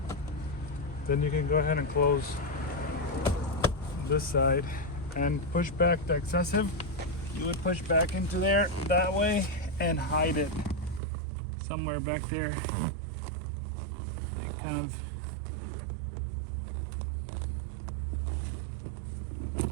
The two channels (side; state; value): left; drops out; at 11.0 s